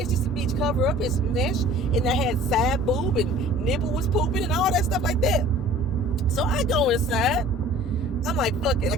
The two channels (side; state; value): both; normal; correlation 0.47